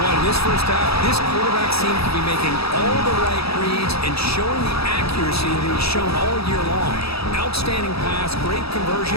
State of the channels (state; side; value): late; right; 0.77 ms